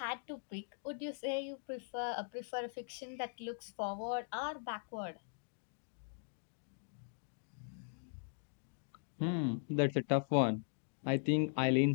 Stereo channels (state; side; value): silent; right; digital silence